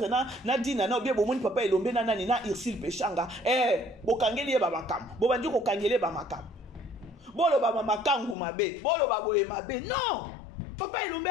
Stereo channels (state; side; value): drops out; right; at 8.3 s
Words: na dina na bien papa Elombe na Irsil Pechanga. Bokangeli ba makam. Bobandi ko kangeli ba makam. Bolo ba makangu mabe, bolo ba boye mabe. Non. Papa Elombe